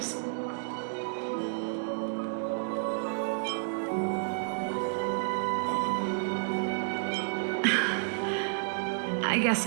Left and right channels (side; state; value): left; silent; digital silence